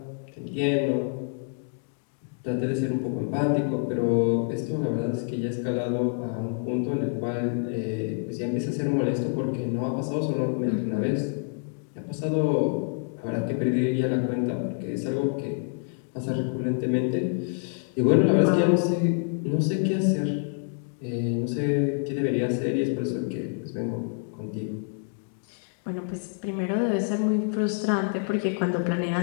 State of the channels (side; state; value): right; silent; 60 dB below the other